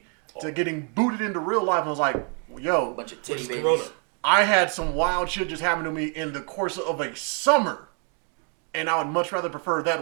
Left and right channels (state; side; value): quieter; left; 39.1 dB